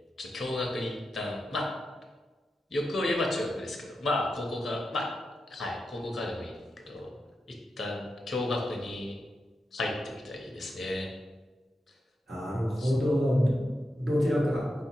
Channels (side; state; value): both; normal; correlation 0.88